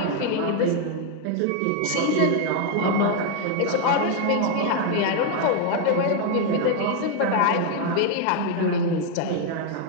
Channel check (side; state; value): both; different; correlation 0.01